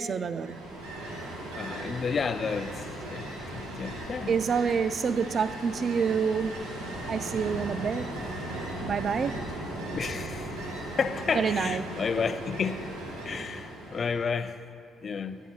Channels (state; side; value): normal; both; correlation 0.75